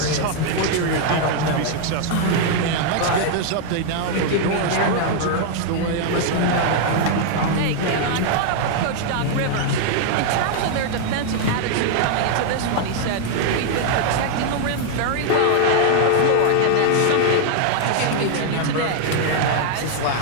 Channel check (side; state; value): both; different; correlation 0.00